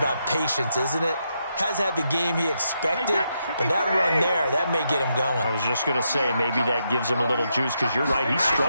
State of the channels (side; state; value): both; inverted; correlation -0.81